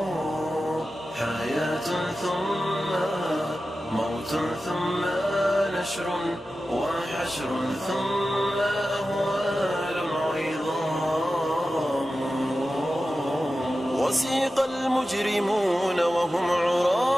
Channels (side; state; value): both; normal; correlation 0.93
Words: حياة ثم موت ثم نشر وحشر ثم أهوال عظام. وسيق المجرمون وهم